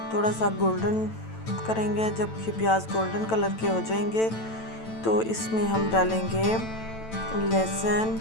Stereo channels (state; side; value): late; right; 9.0 ms